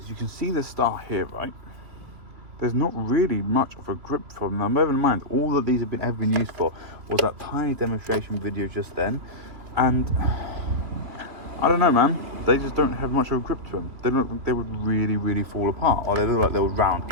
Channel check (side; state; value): left; late; 2.7 ms